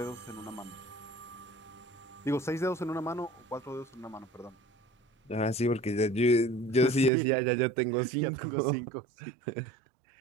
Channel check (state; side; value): drops out; left; at 7.1 s